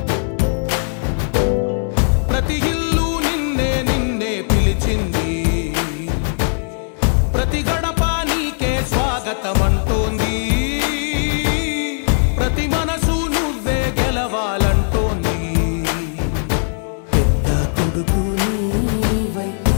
ప్రతి ఇల్లు నిన్నే నిన్నే పిలిచింది, ప్రతి గడప నీకే స్వాగతమంటోంది, ప్రతి మనసు నువ్వే గెలవాలంటోంది. పెద్ద కొడుకు నీవై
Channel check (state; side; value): silent; right; digital silence